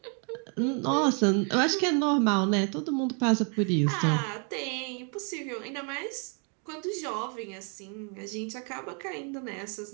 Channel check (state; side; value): quieter; left; 38.4 dB